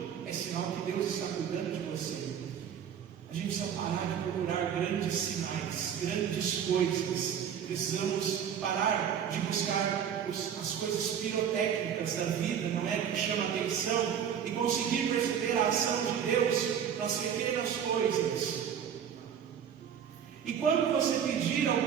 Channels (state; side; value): quieter; left; 8.5 dB